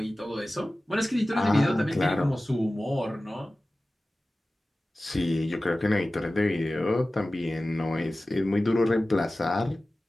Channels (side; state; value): both; normal; correlation 0.96